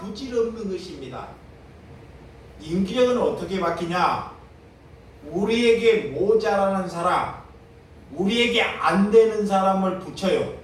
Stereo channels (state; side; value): identical; both; correlation 1.00